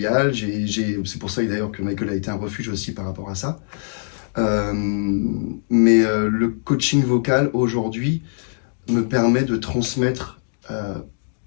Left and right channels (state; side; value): silent; right; digital silence